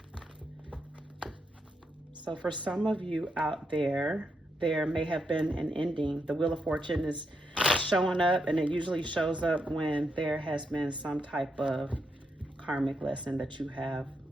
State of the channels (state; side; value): normal; both; correlation 0.81